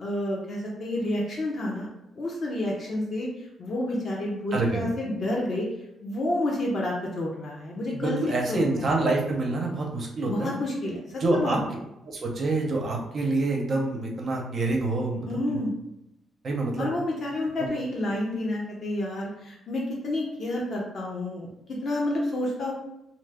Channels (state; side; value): normal; both; correlation 0.76